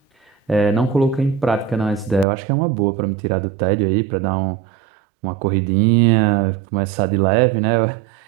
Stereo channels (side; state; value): left; drops out; at 2.2 s